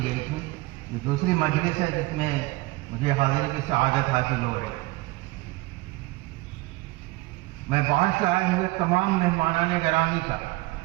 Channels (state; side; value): quieter; left; 21.0 dB